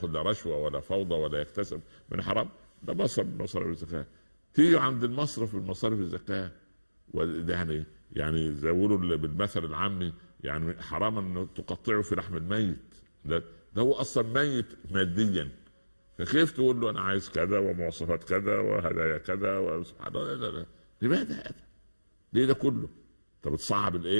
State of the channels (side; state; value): both; inverted; correlation -1.00